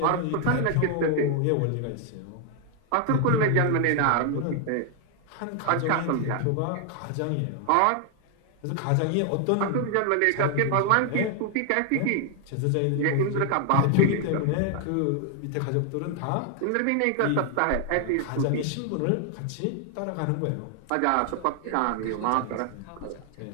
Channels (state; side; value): different; both; correlation 0.00